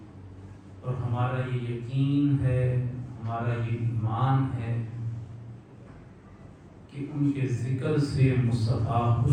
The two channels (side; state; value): both; identical; correlation 1.00